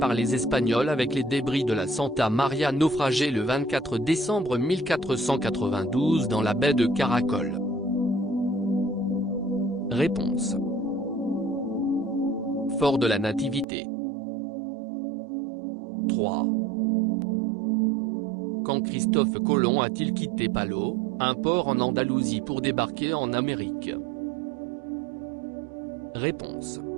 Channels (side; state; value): left; drops out; at 13.7 s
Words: les Espagnols avec les débris de la Santa Maria naufragé le 24 décembre 1492 dans la baie de Caracol? Réponse. Fort de la Nativité. 3. Quand Christophe Colomb a-t-il quitté Palos, un port en Andalousie pour débarquer en Amérique? Réponse.